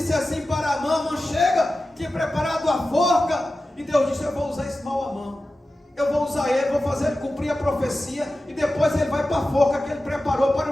assim para Amã: chega, tinha preparado a forca. E Deus disse: eu vou usar esse mau Amã, eu vou usar ele, vou fazer ele cumprir a profecia, e depois ele vai para a forca que ele preparou para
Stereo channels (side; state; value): both; normal; correlation 0.94